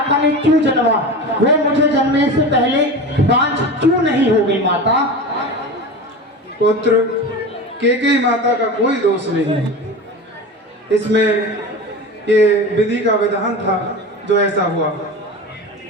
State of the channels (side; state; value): both; normal; correlation 0.29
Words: ने क्यों जन्मा? वो मुझे जन्मने से पहले बांझ क्यों नहीं हो गई? माता पुत्र, केकई माता का कोई दोष नहीं है इसमें। ये विधि का विधान था जो ऐसा हुआ।